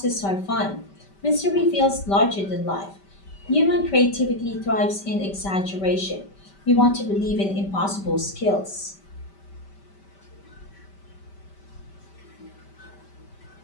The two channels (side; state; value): right; late; 5.1 ms